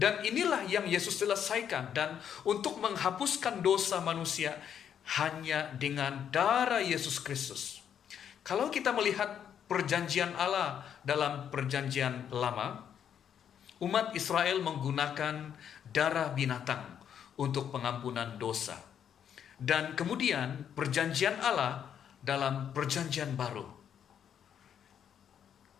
inilah yang Yesus selesaikan. Dan untuk menghapuskan dosa manusia hanya dengan darah Yesus Kristus. Kalau kita melihat perjanjian Allah dalam perjanjian lama, umat Israel menggunakan darah binatang untuk pengampunan dosa. Dan kemudian perjanjian Allah dalam perjanjian baru,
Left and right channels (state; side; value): quieter; right; 8.7 dB